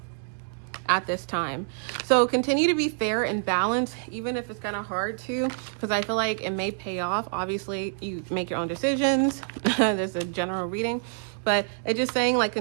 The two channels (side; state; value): left; silent; digital silence